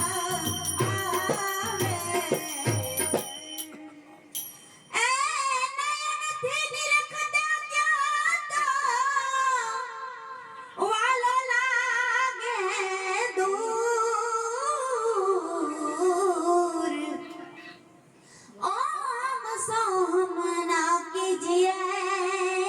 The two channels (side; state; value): both; identical; correlation 1.00